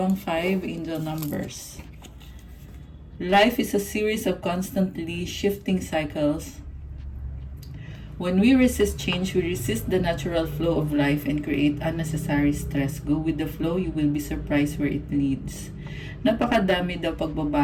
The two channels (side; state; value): both; identical; correlation 1.00